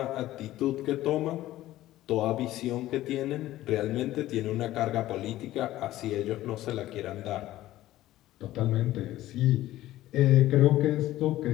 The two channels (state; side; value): quieter; right; 15.1 dB